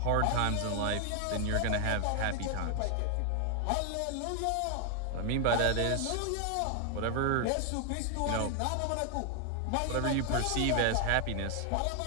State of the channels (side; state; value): both; different; correlation 0.00